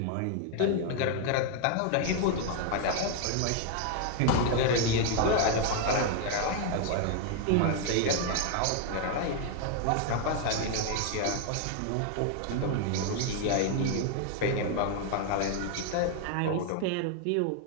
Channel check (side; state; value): both; different; correlation 0.00